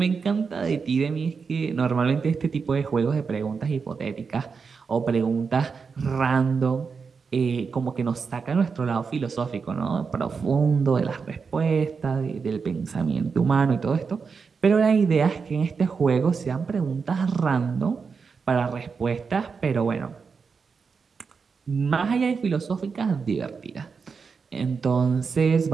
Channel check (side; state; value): left; quieter; 5.4 dB